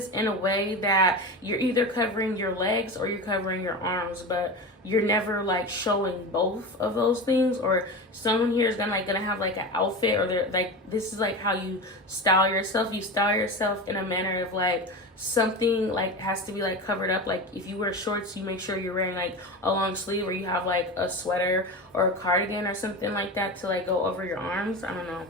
in a way that you're either covering your legs or you're covering your arms, but you're never like showing both of those things. Or someone here is gonna have like an outfit, or they're like, this is like how you style yourself. You style yourself in a manner of like something like has to be like covered up. Like if you wear shorts, you make sure you're wearing like a long sleeve, or you have like a sweater or a cardigan or something like that to like go over your arms. I don't know,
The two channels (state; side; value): normal; both; correlation 0.25